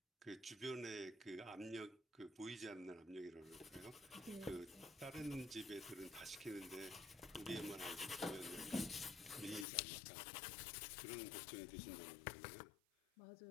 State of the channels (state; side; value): drops out; right; at 9.7 s